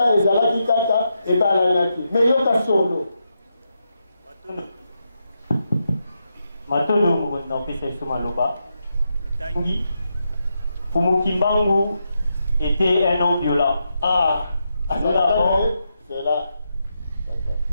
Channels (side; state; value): both; inverted; correlation -0.84